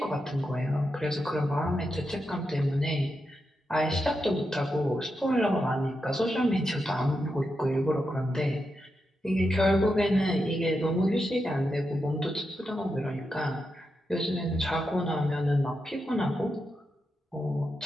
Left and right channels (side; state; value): both; normal; correlation 0.87